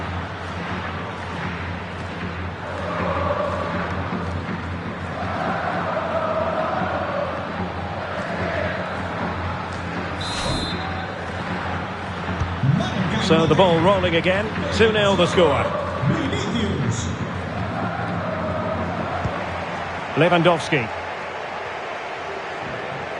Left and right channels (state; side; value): identical; both; correlation 1.00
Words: So the ball rolling again. 2-0 the score. Lewandowski.